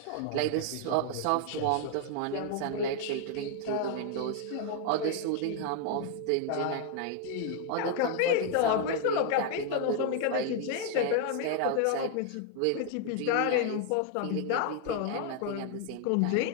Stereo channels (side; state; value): both; different; correlation 0.00